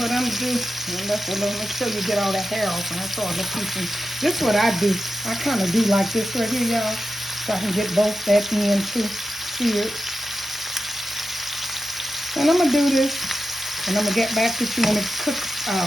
I'm gonna do, make sure you get all the hair off, and that's all the pieces. This is what I do. I kind of do like this right here, y'all, so I can get both that end too seared. And I'm gonna do this, and I'm gonna get back with you when it cooks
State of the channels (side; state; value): both; normal; correlation 0.91